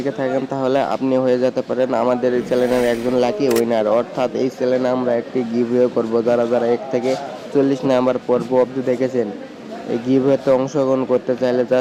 থাকেন তাহলে আপনি হয়ে যেতে পারেন আমাদের এই চ্যানেলের একজন লাকি উইনার। অর্থাৎ এই চ্যানেলে আমরা একটি গিভওয়ে করব। যারা 1 থেকে 40 নম্বর পর্ব অবধি দেখেছেন, এই গিভওয়েতে অংশগ্রহণ করতে চাইলে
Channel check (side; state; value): both; identical; correlation 1.00